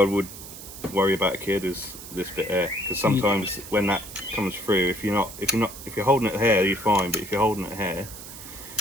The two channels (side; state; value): right; noise; hiss, 13 dB below the sound